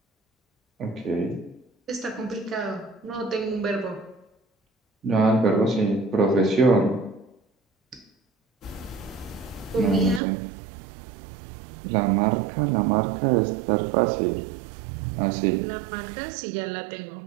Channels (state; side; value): drops out; left; at 10.2 s